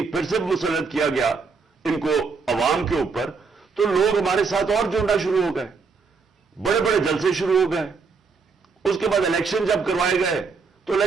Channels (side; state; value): left; quieter; 4.9 dB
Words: پھر سے مسلط کیا گیا ان کو عوام کے اوپر، تو لوگ ہمارے ساتھ اور جڑنا شروع ہو گئے، بڑے بڑے جلسے شروع ہو گئے. اس کے بعد الیکشن جب کروائے گئے تو